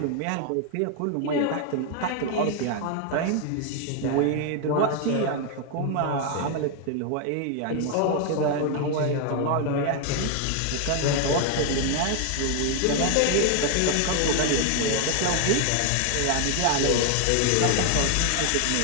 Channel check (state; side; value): different; both; correlation 0.01